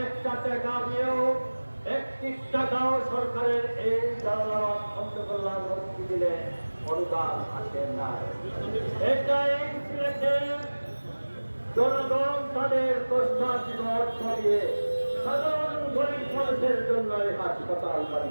একটা টাকা দিয়েও 1 টাকাও সরকারের এই জালালাবাদ অন্ধ কল্যাণ হসপিটালে অনুদান আসে না। এটাই সিলেটের জনগণ তাদের কষ্টার্জিত অর্থ দিয়ে সাধারণ গরিব মানুষের জন্য এই হাসপাতাল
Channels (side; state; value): both; inverted; correlation -1.00